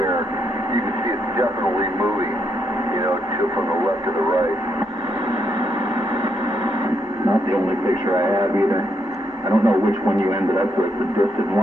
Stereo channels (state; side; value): normal; both; correlation 0.78